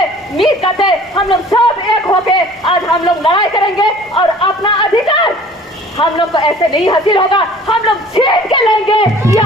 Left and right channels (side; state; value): both; normal; correlation 0.49